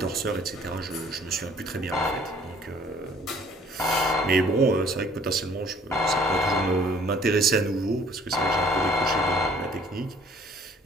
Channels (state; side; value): normal; both; correlation 0.57